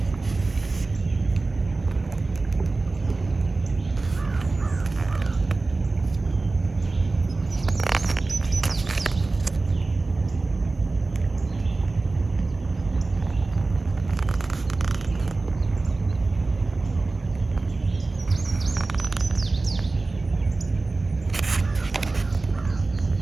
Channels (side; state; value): left; quieter; 3.5 dB